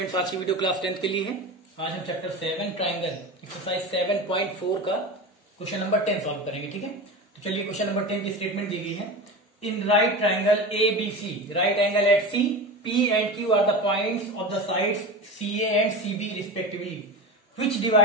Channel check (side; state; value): both; normal; correlation 0.27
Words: आज की video class 10th के लिए है। आज हम चैप्टर 7 ट्राइंगल एक्सरसाइज 7.4 का क्वेश्चन नंबर 10 सॉल्व करेंगे। ठीक है, तो चलिए क्वेश्चन नंबर 10 की स्टेटमेंट दी गई है। In right triangle A B C, right angle at C, P and Q are the points of the sides C A and C B respectively, which